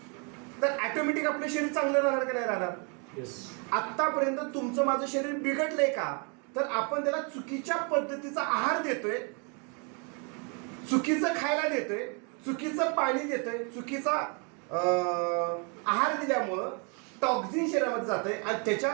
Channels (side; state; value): left; quieter; 35.9 dB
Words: तर ऑटोमॅटिक आपलं शरीर चांगलं राहणार का नाही राहणार? आतापर्यंत तुमचं माझं शरीर बिघडलंय का तर आपण त्याला चुकीच्या पद्धतीचा आहार देतोय, चुकीचं खायला देतोय, चुकीचं पाणी देतोय, चुकीचा आहार दिल्यामुळं टॉक्झिन शरीरामध्ये जातंय आणि त्याच्या